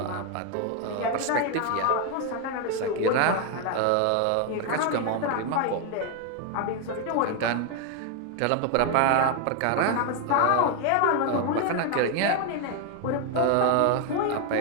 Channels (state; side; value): different; both; correlation 0.01